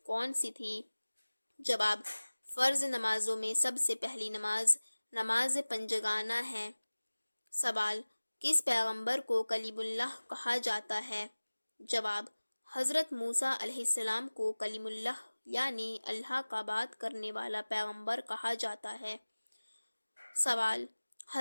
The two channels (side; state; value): both; inverted; correlation -1.00